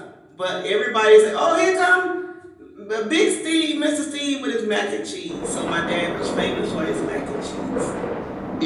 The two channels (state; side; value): identical; both; correlation 1.00